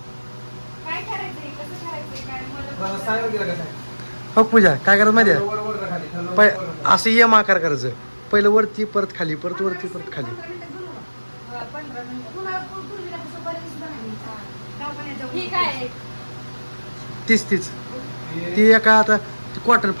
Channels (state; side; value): inverted; both; correlation -1.00